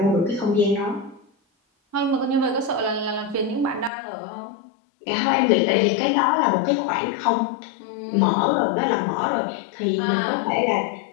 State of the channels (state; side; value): drops out; right; at 3.9 s